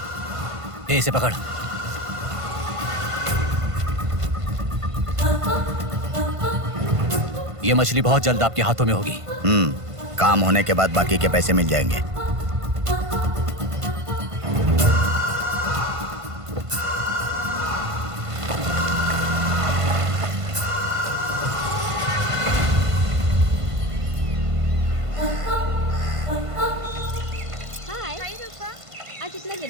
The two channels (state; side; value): late; left; 1.5 ms